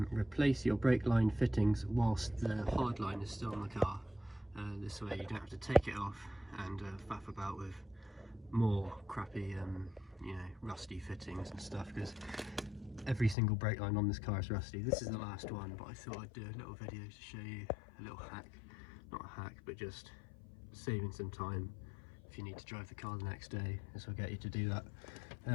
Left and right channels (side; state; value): right; drops out; at 13.4 s